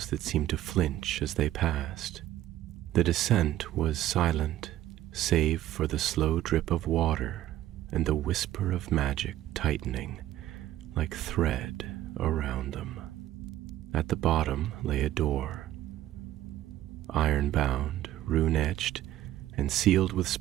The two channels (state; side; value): quieter; left; 13.7 dB